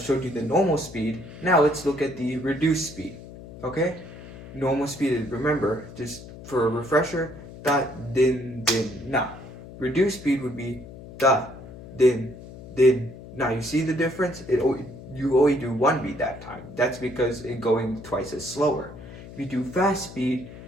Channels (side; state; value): left; noise; hum, 15 dB below the sound